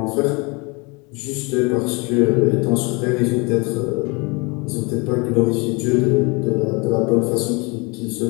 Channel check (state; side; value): quieter; right; 28.7 dB